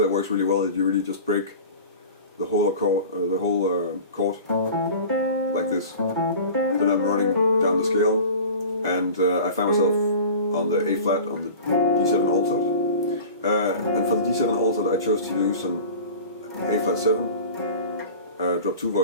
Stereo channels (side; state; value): both; inverted; correlation -0.38